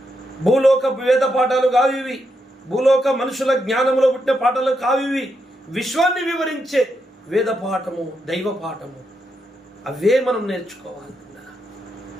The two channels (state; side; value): normal; both; correlation 0.82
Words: భూలోక వేద పాఠాలు కావివి, భూలోక మనుషుల జ్ఞానంలో పుట్టిన పాఠాలు కావివి. విశ్వాన్ని వివరించే వేద పాఠము, దైవ పాఠము, అవే మనం నేర్చుకోవాలి.